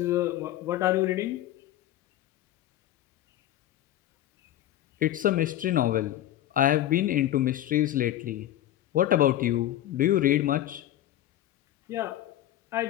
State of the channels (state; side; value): quieter; right; 13.2 dB